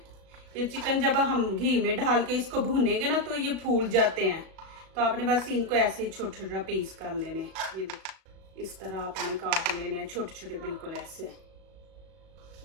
ये चिकन जब हम घी में डाल के इसको भूनेंगे ना तो ये फूल जाते हैं, तो आपने बस इनको ऐसे ही छोटे छोटे पीस कर लेने। ये देखें इस तरह आपने काट लेने हैं छोटे छोटे, बिल्कुल ऐसे।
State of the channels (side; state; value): left; late; 37 ms